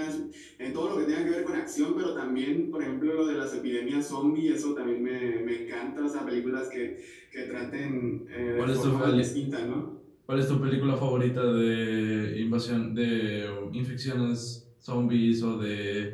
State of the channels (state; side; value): identical; both; correlation 1.00